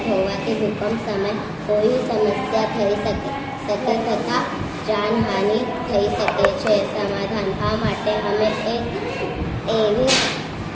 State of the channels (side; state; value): both; identical; correlation 1.00